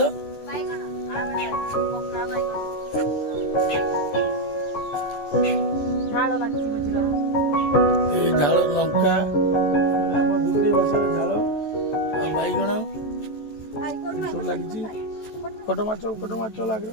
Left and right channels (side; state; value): right; late; 14 ms